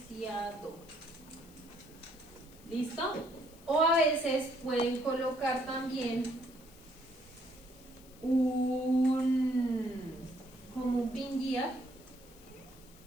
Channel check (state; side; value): noise; left; hiss, 24 dB below the sound